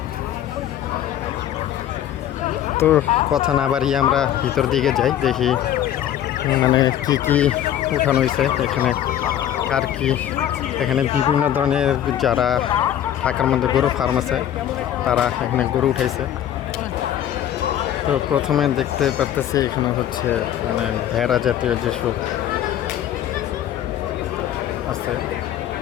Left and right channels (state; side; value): quieter; right; 11.1 dB